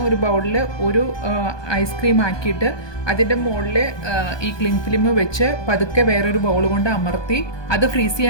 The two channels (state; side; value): late; right; 1.2 ms